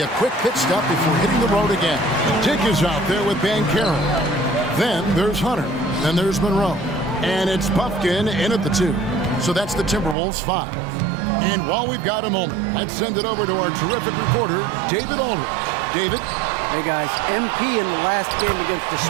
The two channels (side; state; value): left; drops out; at 10.2 s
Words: a quick pit stop before hitting the road again. Dick is out there with Banchero. Then there's Hunter. Then there's Monroe. And it's Puffkin in at the 2. So that's the Timberwolves 5. And while we've got a moment, let's send it over to our terrific reporter, David Aldridge. David? Hey guys, MP in the last game against the